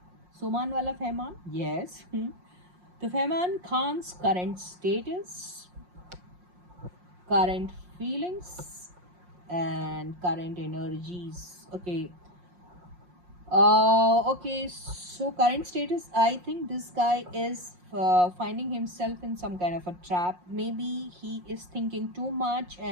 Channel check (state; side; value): late; left; 5.6 ms